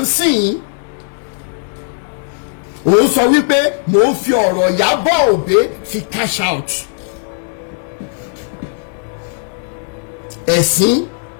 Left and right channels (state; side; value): silent; right; digital silence